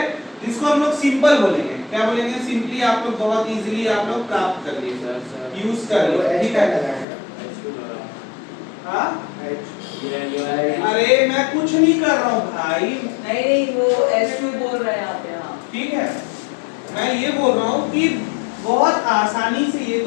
जिसको हम लोग सिंपल बोलेंगे, क्या बोलेंगे? सिंपली आप लोग बहुत इजीली आप लोग प्राप्त कर लिए, यूज कर लिए, ठीक है। हाँ, अरे मैं कुछ नहीं कर रहा हूँ भाई, नहीं वो S2 बोल रहे हैं आप यहाँ। ठीक है, मैं ये बोल रहा हूँ कि बहुत आसानी से ये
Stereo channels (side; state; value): right; drops out; at 7.1 s